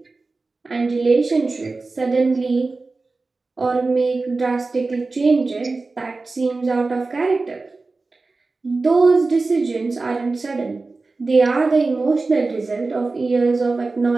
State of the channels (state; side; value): quieter; left; 3.7 dB